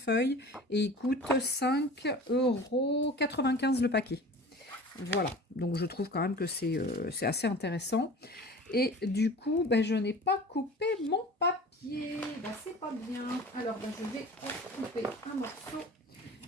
et il coûte 5,95 € le paquet. Voilà. Donc, je trouve quand même que c'est assez intéressant. Et du coup, ben, je n'ai pas coupé mon papier. Ben, c'est pas bien. Alors, ben, je vais en couper un morceau.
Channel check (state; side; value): normal; both; correlation 0.40